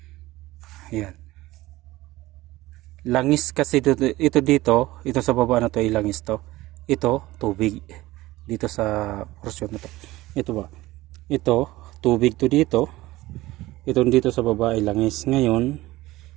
ayan, langis kasi ito dito, ito sa baba na to ay langis to, ito tubig dito sa portion na to, ito ba, ito tubig to dito, ito dito sa baba ay langis. Ngayon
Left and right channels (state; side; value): quieter; left; 18.1 dB